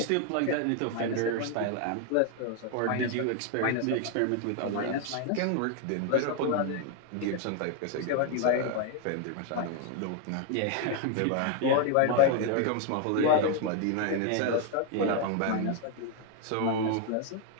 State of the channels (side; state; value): both; different; correlation 0.01